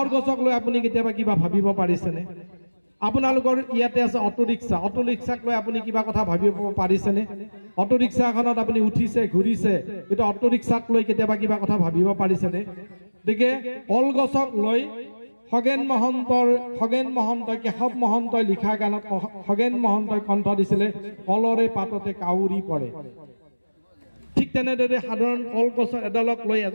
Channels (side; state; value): both; inverted; correlation -1.00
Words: গছক লৈ আপুনি কেতিয়াবা কিবা ভাবিব পাৰিছেনে আপোনালোকৰ ইয়াতে আছে অটো ৰিক্সাক লৈ আপুনি কিবা কথা ভাবিব পাৰিছেনে অটো ৰিক্সাখনত আপুনি উঠিছে ঘূৰিছে কিন্তু অটো ৰিক্সাক লৈ কেতিয়াবা কিবা কথা ভাবিব পাৰিছেনে গতিকে কলগছক লৈ খগেন মহন্তই কেশৱ মহন্তই লিখা গানত খগেন মহন্তই কণ্ঠ দিছিলে কলৰে পাততে কাউৰী পৰে ঠিক তেনেদৰে সাধাৰণ কলগছ এডালক লৈ